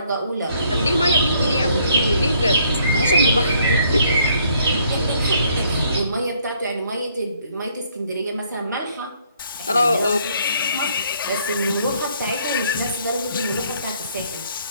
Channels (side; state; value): both; inverted; correlation -0.66